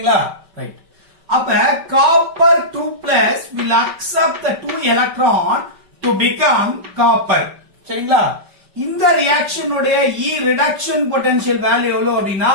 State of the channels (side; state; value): left; late; 5.2 ms